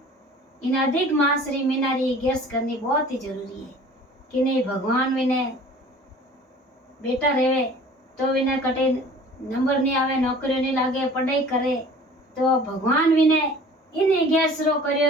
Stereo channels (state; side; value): normal; both; correlation 0.46